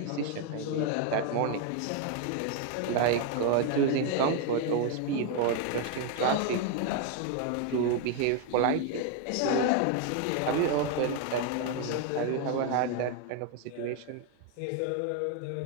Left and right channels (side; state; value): both; different; correlation 0.01